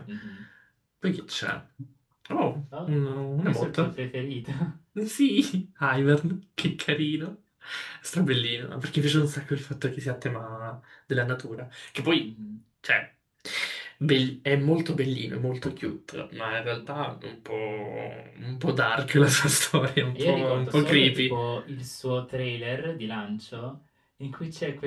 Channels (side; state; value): both; identical; correlation 1.00